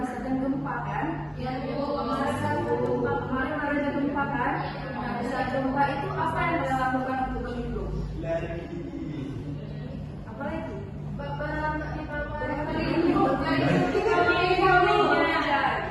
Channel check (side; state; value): both; identical; correlation 1.00